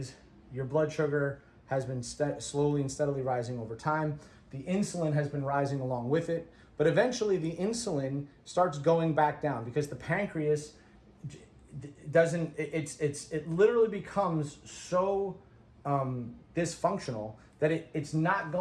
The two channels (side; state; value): both; identical; correlation 1.00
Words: your blood sugar has been slowly and steadily rising over time. The insulin has been rising along with it, but eventually the insulin starts going back down because the pancreas it literally becomes so dysfunctional that it's not